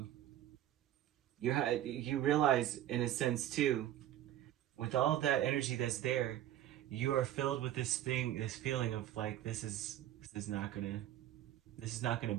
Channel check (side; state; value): left; quieter; 12.4 dB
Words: you realize in a sense too, with all of that energy that's there, you are filled with this feeling of like, this is not gonna